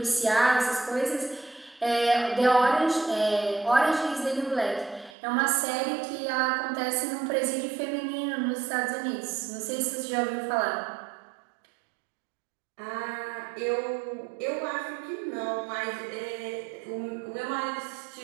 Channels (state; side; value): drops out; left; at 5.2 s